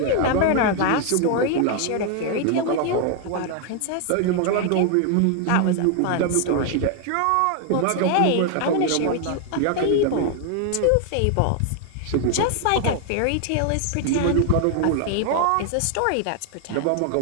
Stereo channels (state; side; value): different; both; correlation 0.00